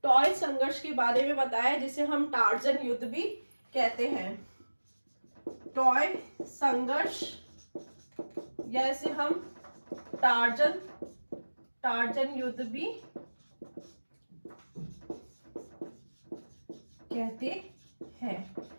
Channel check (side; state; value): both; inverted; correlation -1.00